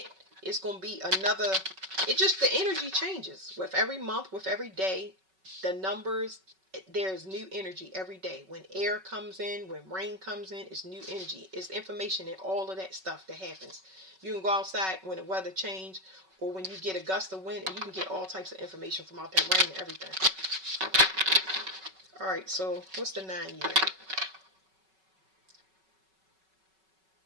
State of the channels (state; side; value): late; left; 5.3 ms